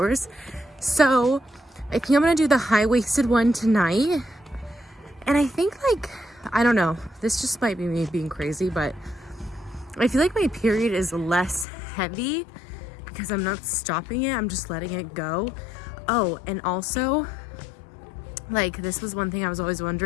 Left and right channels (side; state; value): right; drops out; at 11.7 s